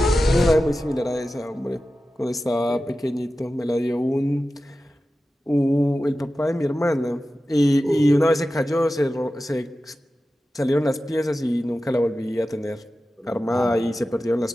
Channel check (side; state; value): both; normal; correlation 0.94